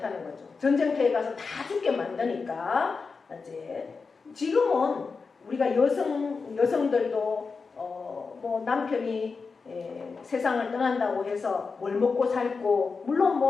거죠. 전쟁터에 가서 다 죽게 만드니까 이제 지금은 우리가 여성들도 뭐 남편이 세상을 떠난다고 해서 뭘 먹고 살고 물론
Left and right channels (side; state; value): right; quieter; 4.7 dB